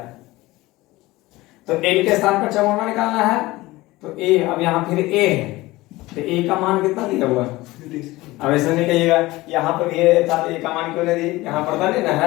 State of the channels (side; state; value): right; quieter; 19.4 dB